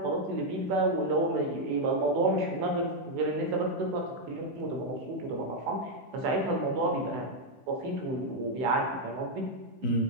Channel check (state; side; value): late; left; 16 ms